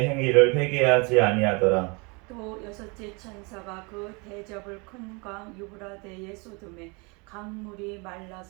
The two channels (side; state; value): left; quieter; 30.0 dB